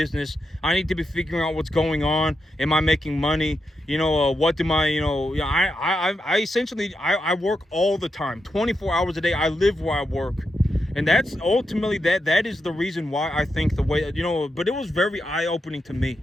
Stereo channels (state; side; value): normal; both; correlation 0.85